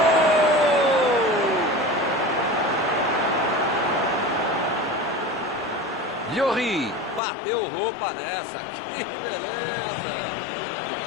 Lloris bateu roupa nessa. Que beleza!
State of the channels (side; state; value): right; drops out; at 7.2 s